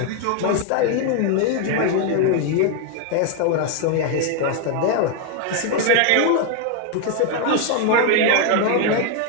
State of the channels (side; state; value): both; different; correlation 0.01